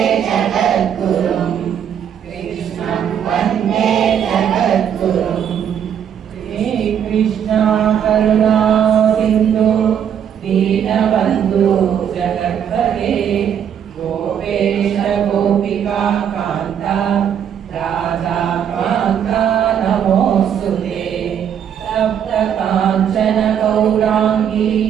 ಜಗದ್ಗುರುಂ. ಕೃಷ್ಣಂ ವಂದೇ ಜಗದ್ಗುರುಂ. ಹೇ ಕೃಷ್ಣ ಕರುಣಾ ಸಿಂಧು ದೀನಬಂಧು ಜಗತ್ಪತೆ ಗೋಪೇಶ ಗೋಪಿಕಾ ಕಾಂತ ರಾಧಾ ಕಾಂತ ನಮೋಸ್ತುತೆ. ಸಪ್ತ ಕಾಂಚನ ಗೌರಾಂಗಿ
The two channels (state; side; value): quieter; left; 8.8 dB